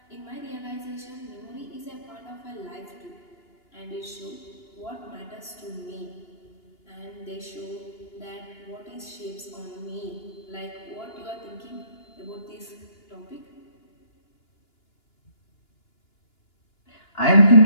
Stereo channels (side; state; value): right; late; 2.9 ms